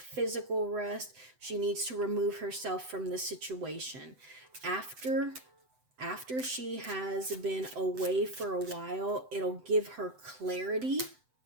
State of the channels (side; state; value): left; late; 7.9 ms